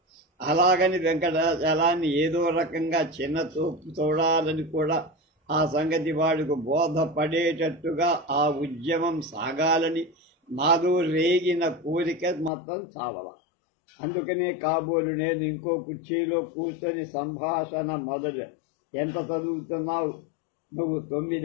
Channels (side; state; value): right; drops out; at 12.5 s